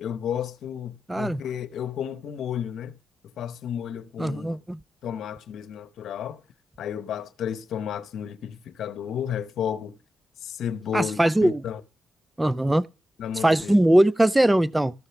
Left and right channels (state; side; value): normal; both; correlation 0.92